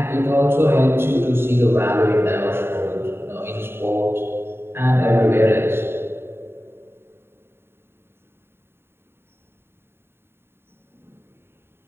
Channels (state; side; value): late; left; 0.11 ms